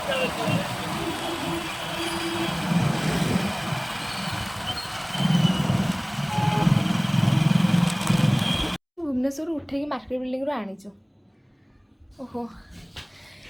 भुवनेश्वर उठेकी मार्केट बिल्डिंग आनीचु ओहो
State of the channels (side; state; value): both; identical; correlation 1.00